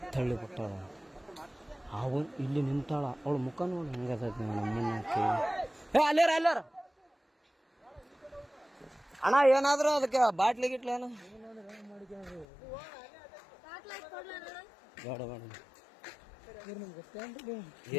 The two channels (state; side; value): drops out; right; at 12.5 s